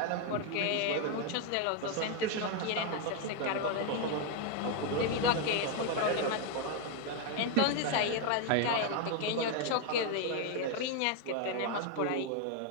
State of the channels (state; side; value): different; both; correlation 0.01